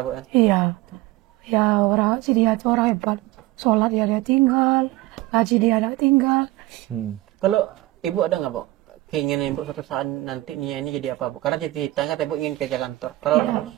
Bu. Iya, ya orang si dia itu orang hebat. Sholat dia tinggal, ngaji dia tinggal. Kalau ibu ada nggak Bu keinginan ibu suatu saat nanti Nia ini jadi apa Bu? Karena ceritanya kata ibu ingin kerja kantor. Kalau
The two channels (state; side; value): quieter; left; 18.1 dB